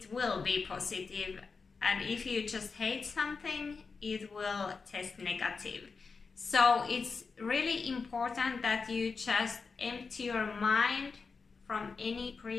will be positive, and if you just hate something, it will test negative. So it's really important that you just empty your mind from any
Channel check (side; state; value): right; quieter; 4.8 dB